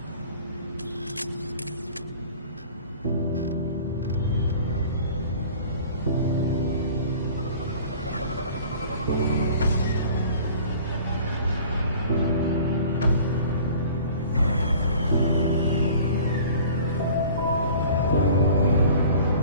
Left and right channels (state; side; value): inverted; both; correlation -0.46